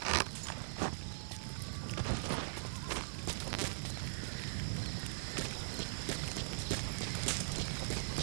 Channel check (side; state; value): left; silent; digital silence